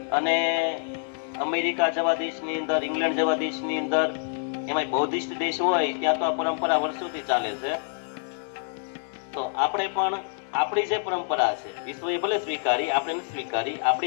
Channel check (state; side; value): silent; right; digital silence